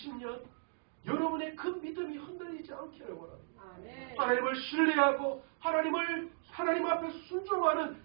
여러분의 그 믿음이 흔들리지 않기를 원합니다. 아멘. 하나님을 신뢰하고 하나님 앞에 순종하는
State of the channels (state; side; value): silent; left; digital silence